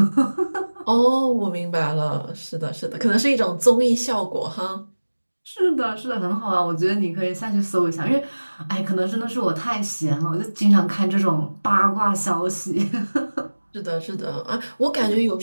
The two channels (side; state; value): both; inverted; correlation -1.00